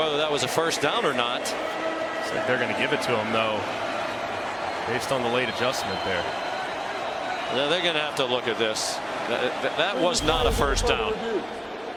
that was a first down or not. Looks like they're going to give it to him, though, based on the late adjustment there. Yeah, they're going to have to look at this. That was not a first down.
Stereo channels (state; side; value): identical; both; correlation 1.00